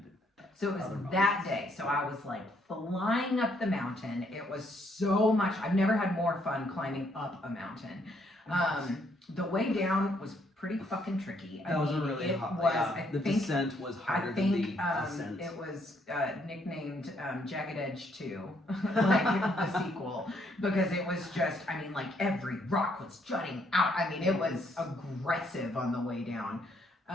it. So it was that day. So I was like flying up the mountain. It was so much. I've never had more fun climbing up a mountain. The way down was pretty fucking tricky. That was a really hot. Yeah, the descent was harder than the ascent. It was nicknamed Jagged Edge 2, like the sequel, because it was just, I mean, like every rock was jutting out. I mean, it was aggressive on the way down.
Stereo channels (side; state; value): both; normal; correlation 0.70